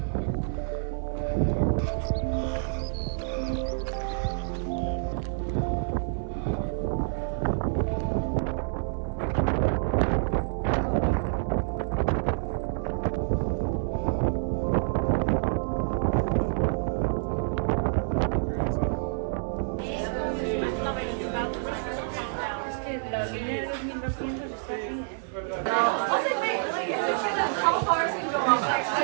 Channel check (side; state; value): left; silent; 59 dB below the other